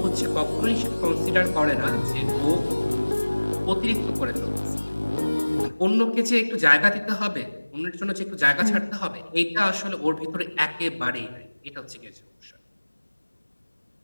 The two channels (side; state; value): both; inverted; correlation -1.00